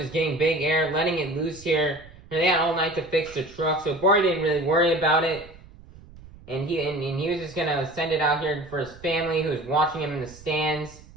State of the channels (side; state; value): right; noise; rumble, 20 dB below the sound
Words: getting big air, letting it loose here. And they had all night to fix the truck, so Bari didn't really worry about it. And he was just gonna send it out here for his family who was watching him in the stands.